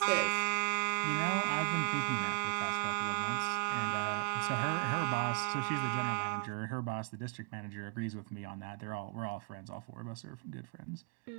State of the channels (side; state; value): left; quieter; 36.4 dB